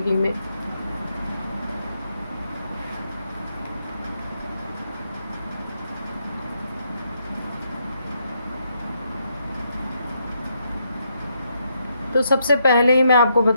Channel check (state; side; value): inverted; both; correlation -0.77